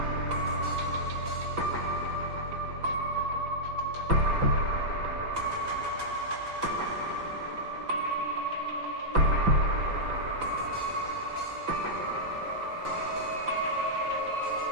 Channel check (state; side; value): late; left; 5.9 ms